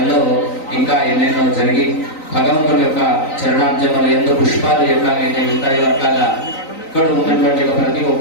ఇంకా ఎన్నెన్నో జరిగి భగవంతుడి యొక్క చరణాబ్జములు ఎందు పుష్పాలు ఎట్లాగైతే ఉంటాయో అట్లాగా ఇక్కడ ఉన్నటువంటి ప్రతి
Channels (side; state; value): right; late; 3.9 ms